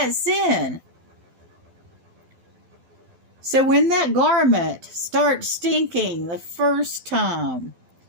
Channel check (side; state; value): left; late; 12 ms